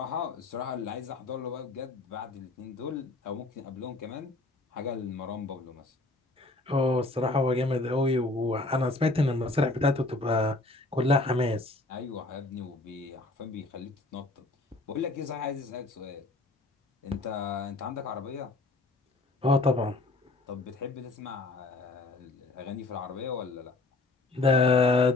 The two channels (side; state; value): right; quieter; 3.1 dB